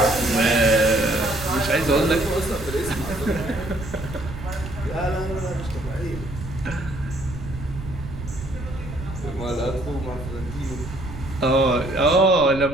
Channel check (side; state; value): right; noise; rumble, 10 dB below the sound